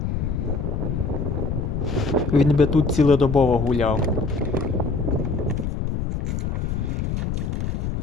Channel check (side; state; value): left; noise; rumble, 1 dB below the sound